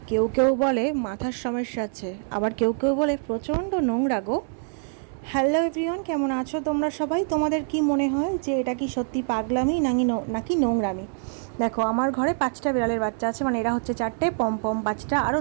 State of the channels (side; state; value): left; silent; digital silence